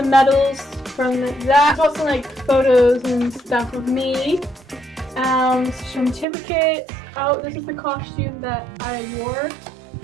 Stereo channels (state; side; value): drops out; left; at 6.2 s